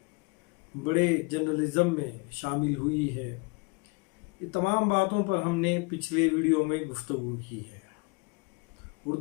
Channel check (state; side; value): quieter; right; 29.7 dB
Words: بڑے جرنلزم میں شامل ہوئی ہے، یہ تمام باتوں پر ہم نے پچھلے ویڈیو میں گفتگو کی ہے۔